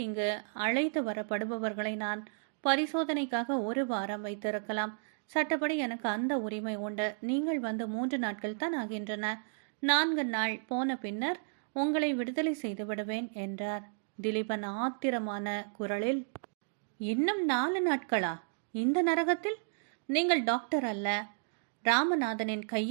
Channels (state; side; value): silent; left; digital silence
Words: இங்கு அழைத்து வரப்படுபவர்களை நான் பரிசோதனைக்காக 1 வாரம் வைத்திருக்கலாம். சட்டப்படி எனக்கு அந்த உரிமை உண்டு. நீங்கள் வந்து 3 நாட்கள் தான் ஆகின்றன. 4 நாள் போன பின்னர் உங்களை விடுதலை செய்து விடுவேன் என்றார். திலீபன் ஆத்திரமான குரலில், இன்னும் 4 நாட்களா? இந்த நரகத்தில்? நீங்கள் டாக்டர் அல்ல, ராமநாதனின்